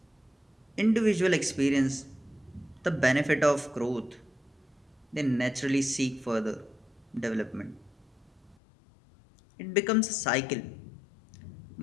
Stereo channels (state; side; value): drops out; right; at 8.6 s